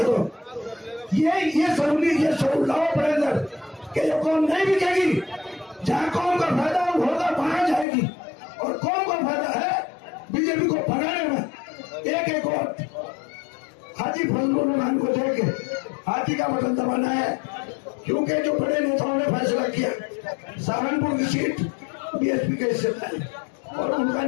दो। ये जरूर लाओ अपने अंदर कि ये कौम नहीं बिकेगी। जहां कौम का फायदा होगा वहां जाएगी, और कौम का फायदा है बीजेपी को भगाने में। एक वोट हाजी फजलुर रहमान को देके हाथी का बटन दबाना है, क्योंकि जो बड़े नेताओं ने फैसला किया सहारनपुर की सीट बीएसपी के हिस्से में, और उनका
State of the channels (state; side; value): drops out; right; at 7.9 s